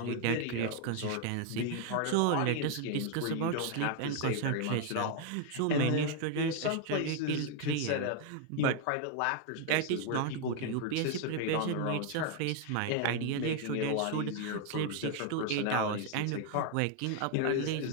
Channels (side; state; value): both; different; correlation 0.00